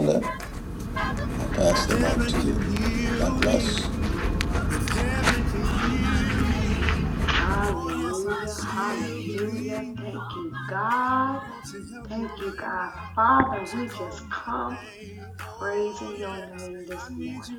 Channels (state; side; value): identical; both; correlation 1.00